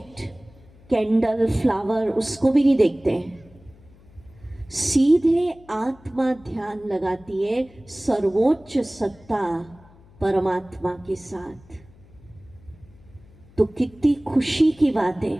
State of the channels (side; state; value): left; noise; hum, 26 dB below the sound